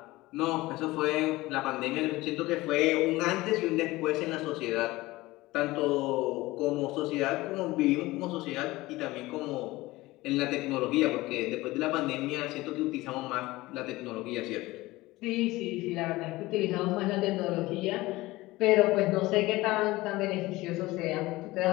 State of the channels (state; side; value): quieter; right; 19.4 dB